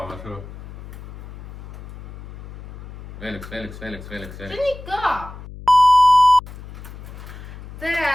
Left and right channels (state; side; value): noise; left; hum, 15 dB below the sound